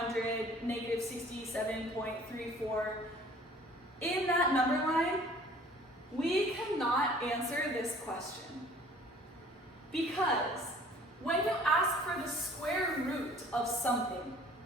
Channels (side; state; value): both; normal; correlation 0.52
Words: -67.34. In that number line, we cannot answer this question. Because when you ask for the square root of something,